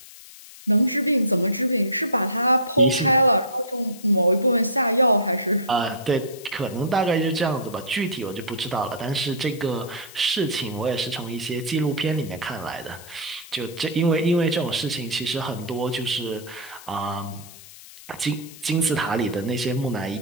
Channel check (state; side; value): noise; left; hiss, 18 dB below the sound